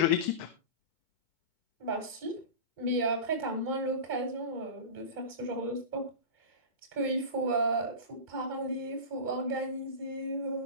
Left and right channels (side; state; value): left; late; 2.2 ms